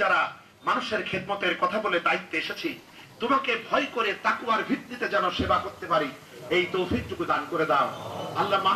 যারা মানুষের খেদমতের কথা বলে দায়িত্বে এসেছি, তোমাকে ভয় করে তাকওয়ার ভিত্তিতে যেন সেবা করতে পারি, এই তৌফিকটুকু দান করে দাও। আল্লাহ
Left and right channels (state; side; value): identical; both; correlation 1.00